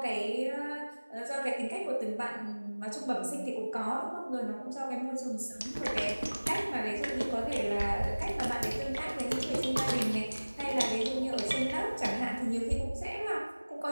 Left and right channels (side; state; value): both; inverted; correlation -1.00